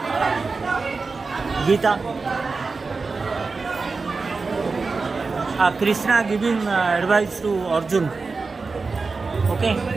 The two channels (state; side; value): quieter; left; 4.2 dB